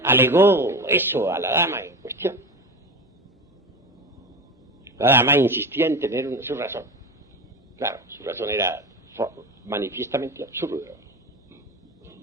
alegó eso a la dama en cuestión. La dama insistía en tener su razón. Claro, su razón era manifiestamente absurda.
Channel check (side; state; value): both; normal; correlation 0.25